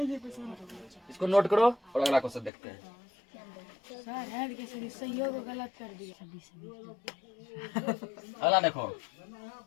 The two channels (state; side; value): drops out; right; at 2.5 s